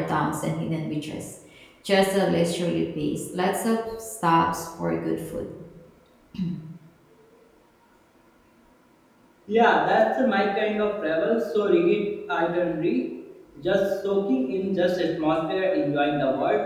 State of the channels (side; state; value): both; identical; correlation 1.00